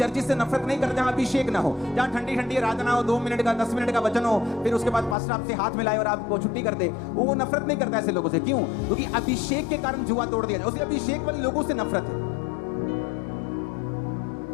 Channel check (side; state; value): right; drops out; at 5.2 s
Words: से नफरत नहीं करता जहां अभिषेक ना हो, जहां ठंडी ठंडी आराधना हो, 2 मिनट का 10 मिनट का वचन हो, फिर उसके बाद पास्टर आपसे हाथ मिलाए और आपको छुट्टी कर दे। वो नफरत नहीं करता ऐसे लोगों से। क्यों? क्योंकि अभिषेक के कारण जुआ तोड़ दिया जाए। उसे अभिषेक वाले लोगों से नफरत है।